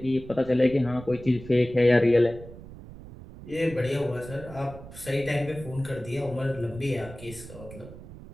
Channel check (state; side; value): noise; right; rumble, 15 dB below the sound